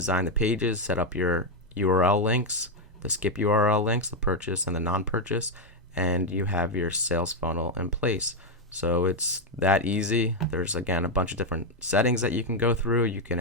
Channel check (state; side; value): normal; both; correlation 0.03